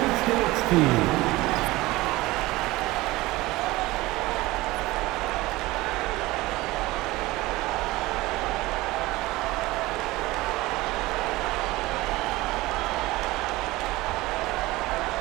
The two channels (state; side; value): quieter; left; 19.6 dB